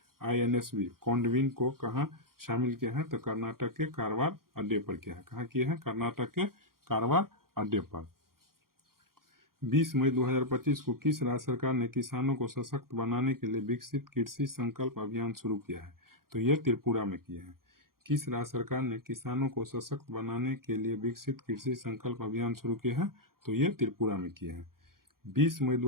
INSV कोंडविन को कहाँ शामिल किया है? तो कर्नाटक के कारवार अड्डे पर किया है। कहाँ किया है? कर्नाटक के कारवार अड्डे पर। 20 मई 2025 को किस राज्य सरकार ने किसानों को सशक्त बनाने के लिए विकसित कृषि संकल्प अभियान शुरू किया है? तो यह त्रिपुरा में किया है। किस राज्य सरकार ने किसानों को सशक्त बनाने के लिए विकसित कृषि संकल्प अभियान शुरू किया है? तो यह त्रिपुरा में किया है। 20 मई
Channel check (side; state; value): left; late; 0.92 ms